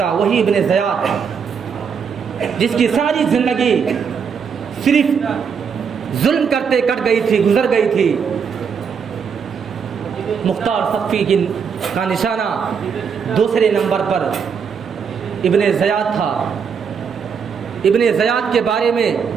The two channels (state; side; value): quieter; left; 6.6 dB